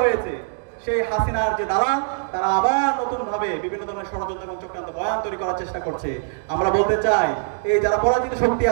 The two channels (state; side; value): silent; left; digital silence